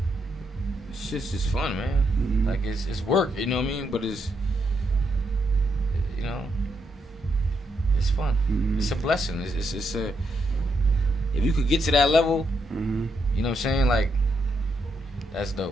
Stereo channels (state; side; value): normal; both; correlation 0.79